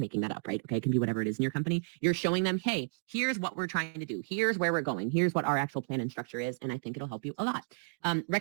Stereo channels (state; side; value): silent; left; digital silence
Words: that up, right? Okay, it can be whatever it is in your company. You're showing them, hey, here's what we're trying to do. Here's where we're going. Here's what our actual plan and structure is. And I think it'll help you a lot.